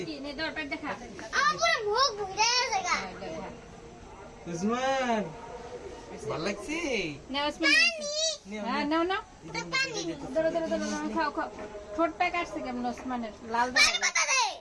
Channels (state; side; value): identical; both; correlation 1.00